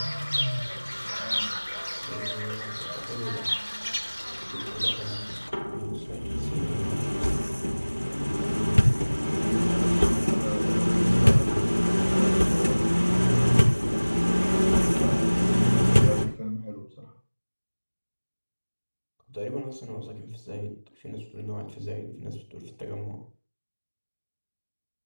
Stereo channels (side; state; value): both; inverted; correlation -1.00